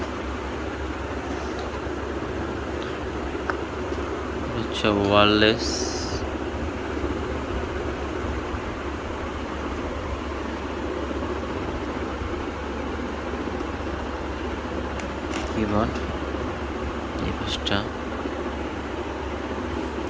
হচ্ছে ওয়্যারলেস কিবোর্ড। এই পাশটা।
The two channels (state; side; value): identical; both; correlation 1.00